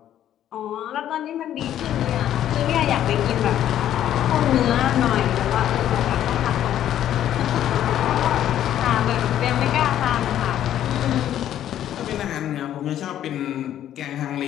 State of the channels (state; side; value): quieter; right; 11.3 dB